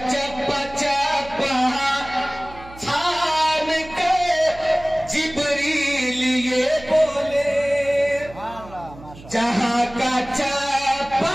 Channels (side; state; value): right; noise; hum, 18 dB below the sound